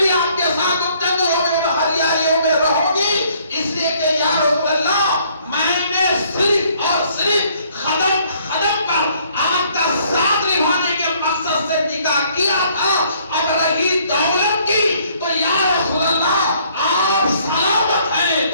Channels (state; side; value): inverted; both; correlation -0.63